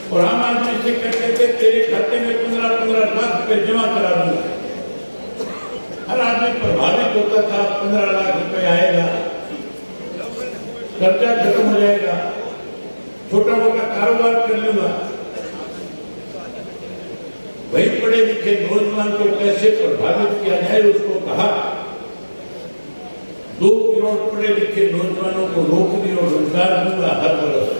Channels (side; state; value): both; inverted; correlation -1.00